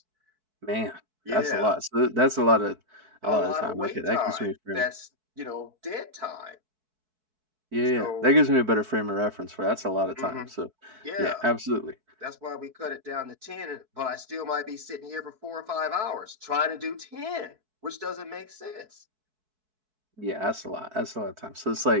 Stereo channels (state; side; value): late; left; 4.6 ms